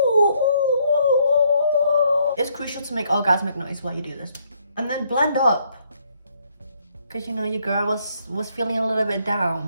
It's crucial to make orgasmic noise while you do this. And then blend up. Cause you know your girl was feeling a little bit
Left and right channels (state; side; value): inverted; both; correlation -0.70